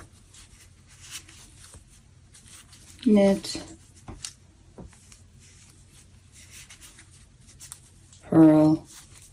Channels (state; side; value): identical; both; correlation 1.00